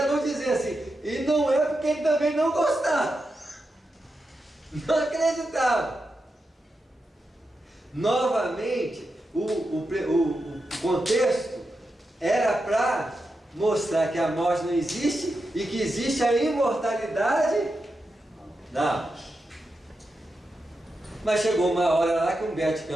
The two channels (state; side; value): normal; both; correlation 0.88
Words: vão dizer assim, e não é porque ele também não gostava. Não acreditava. Novamente, o contexto era para mostrar que a morte não existe e que existe a imortalidade da alma. Mas chegou uma hora lá que Humberto de